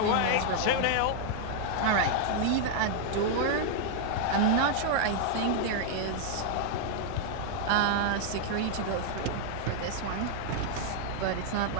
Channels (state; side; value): different; both; correlation 0.00